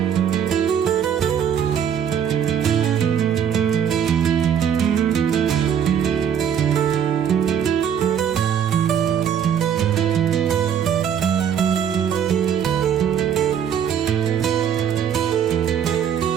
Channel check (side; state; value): left; quieter; 8.6 dB